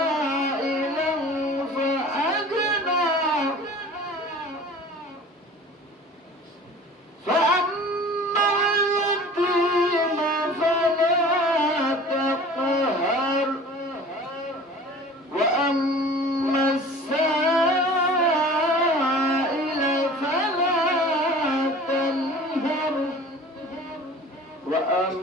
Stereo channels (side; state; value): both; normal; correlation 0.43